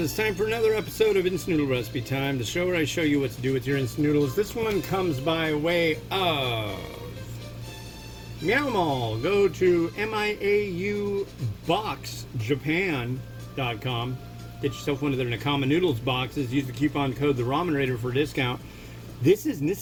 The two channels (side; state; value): both; identical; correlation 1.00